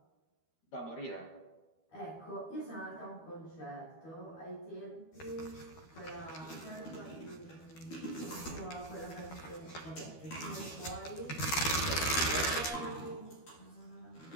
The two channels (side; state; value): right; late; 12 ms